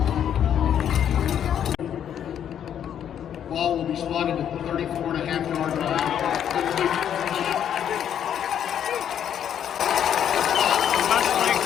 Ball will be spotted at the 34.5-yard line. Westlake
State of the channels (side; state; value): right; quieter; 9.4 dB